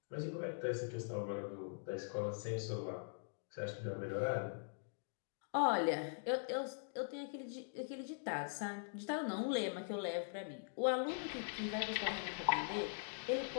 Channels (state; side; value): silent; right; digital silence